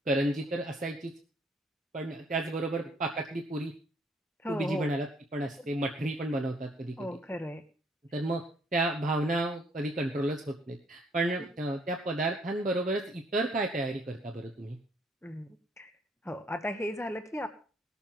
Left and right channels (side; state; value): both; normal; correlation 0.65